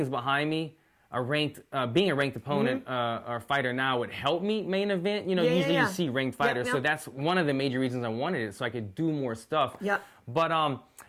behind me, being a ranked opponent or fighter now would help me main event. You know, usually you see ranked fighters, so that's one of the major reasons I wanted it, so I could do more stuff. Yep. But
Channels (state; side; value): identical; both; correlation 1.00